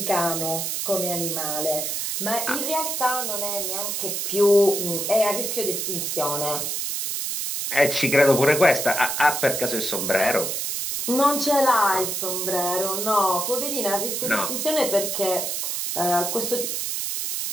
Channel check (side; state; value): right; noise; hiss, 2 dB below the sound